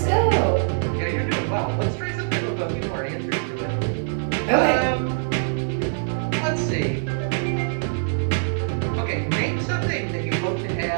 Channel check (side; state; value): left; silent; digital silence